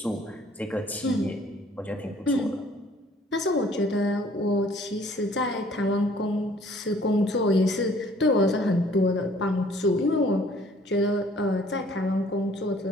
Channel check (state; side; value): normal; both; correlation 0.57